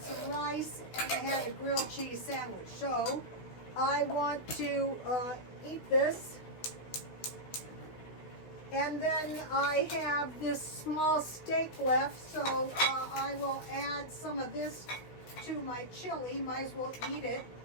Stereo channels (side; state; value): right; late; 16 ms